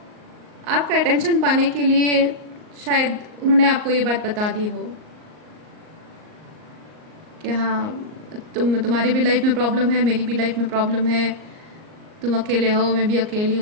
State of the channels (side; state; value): left; late; 38 ms